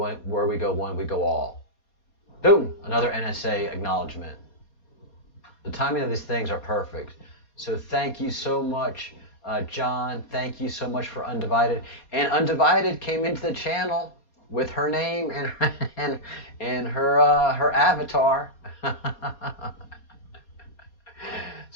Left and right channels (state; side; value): late; right; 4.2 ms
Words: go one, we go all. Boom, another NSA acknowledgement. The timing of these things are perfect. So thank you so much, John. Thank you so much for Undivided. And Undivided came into the channel with her name and her avatar.